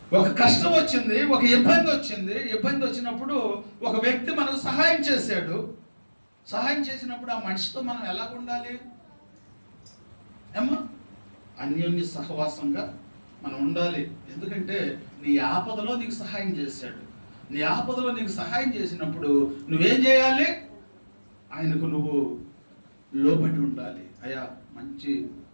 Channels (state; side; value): inverted; both; correlation -1.00